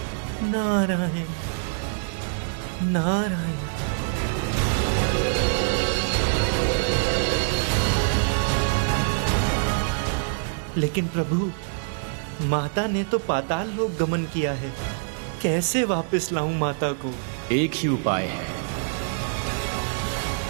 नारायण नारायण। लेकिन प्रभु, माता ने तो पाताल लोक गमन किया है। कैसे वापस लाऊं माता को? एक ही उपाय है,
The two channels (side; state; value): left; silent; 62 dB below the other